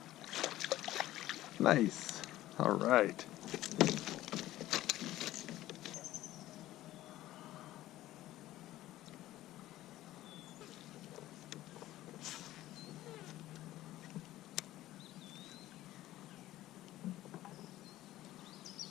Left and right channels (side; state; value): right; quieter; 15.1 dB